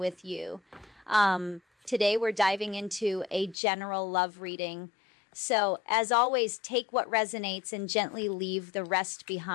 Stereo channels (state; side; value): drops out; right; at 3.6 s